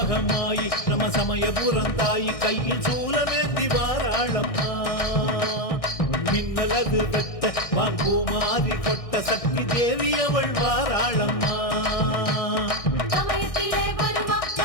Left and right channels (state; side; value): late; right; 1.6 ms